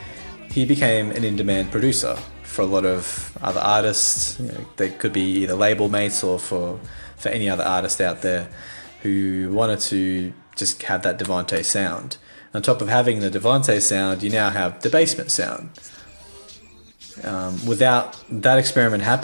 he became an in-demand producer for a lot of other artists. You know, they could be either label mates or for any other artist out there who wanted to just have that Devante sound. On top of having the Devante sound, you now have the Bassment sound. Without that experiment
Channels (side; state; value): both; inverted; correlation -1.00